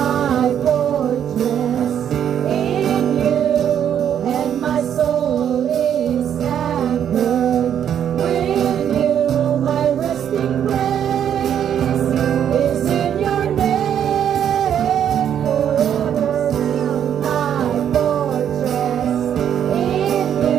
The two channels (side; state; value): left; quieter; 9.3 dB